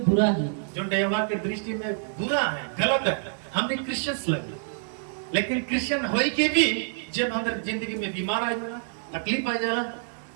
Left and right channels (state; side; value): silent; left; digital silence